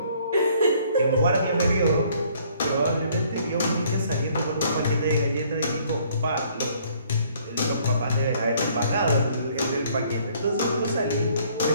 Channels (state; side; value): inverted; both; correlation -0.62